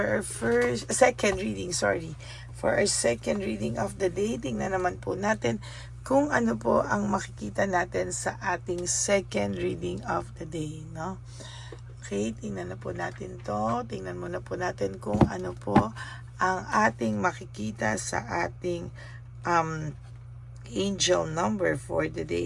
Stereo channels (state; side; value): identical; both; correlation 1.00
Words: our second reading, For our second reading of the day, tingnan naman po natin kung ano po ang makikita natin sa ating second reading of the day, no? Okay, tingnan na po natin to. Tingnan muna po natin kung ano po ang ating makikita sa ating angel number for the